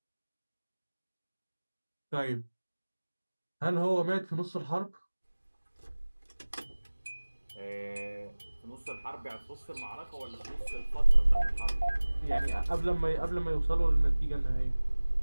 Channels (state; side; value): inverted; both; correlation -1.00